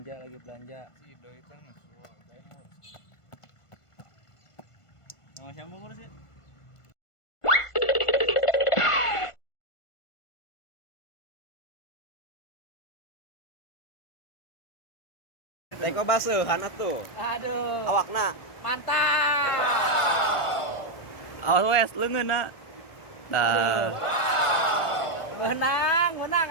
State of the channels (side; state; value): right; late; 1.5 ms